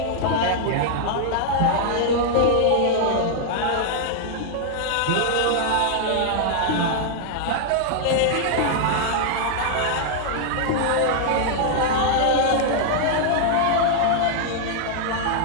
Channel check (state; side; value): different; both; correlation -0.01